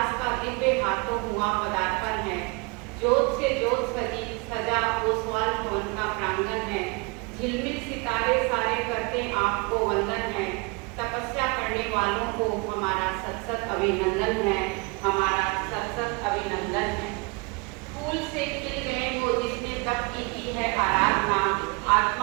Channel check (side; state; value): left; quieter; 29.0 dB